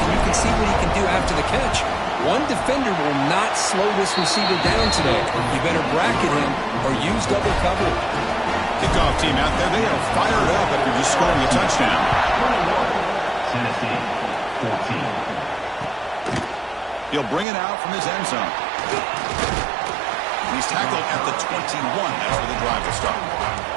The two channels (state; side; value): drops out; left; at 17.4 s